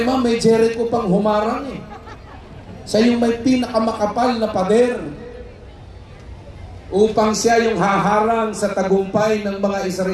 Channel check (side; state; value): both; identical; correlation 1.00